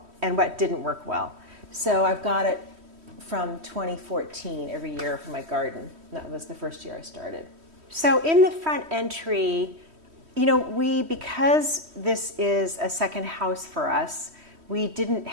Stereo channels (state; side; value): late; left; 3.1 ms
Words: and what didn't work well. So I've got it from 2014 every year for my garden. That was the first year I started. So in the front entry, because this is a second house for us, we didn't